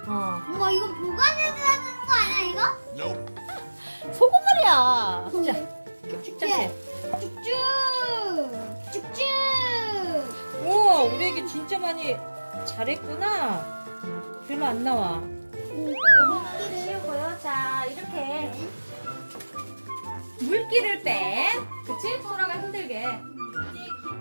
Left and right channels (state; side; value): inverted; both; correlation -1.00